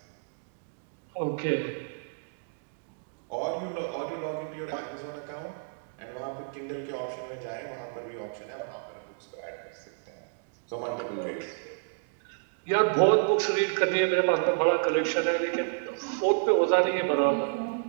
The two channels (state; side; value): silent; left; digital silence